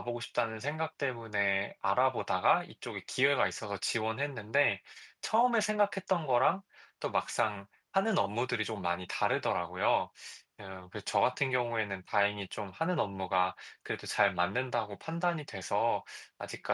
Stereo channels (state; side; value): identical; both; correlation 1.00